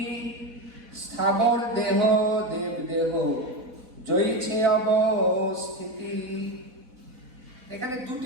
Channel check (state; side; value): late; left; 4.1 ms